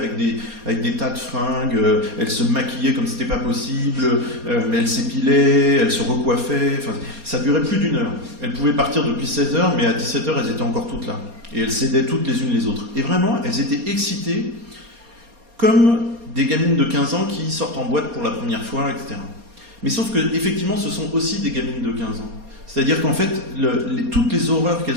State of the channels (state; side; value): late; left; 4.2 ms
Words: des tas de fringues, elles se maquillaient comme c'était pas possible, elles s'épilaient, elles se recoiffaient, enfin, ça durait plus d'1 heure. Elles pouvaient partir depuis 16h, mais à 17h, elles étaient encore toutes là. Et elles s'aidaient toutes les unes les autres. Et vraiment, elles étaient excitées comme des gamines de 15 ans qui sortent en boîte pour la première fois, etc. Mais sauf que, effectivement, ce sont aussi des gamines de 15 ans. C'est-à-dire qu'en fait, toutes les horreurs